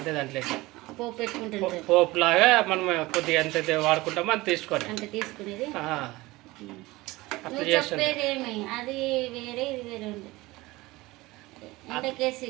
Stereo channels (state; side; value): quieter; left; 20.4 dB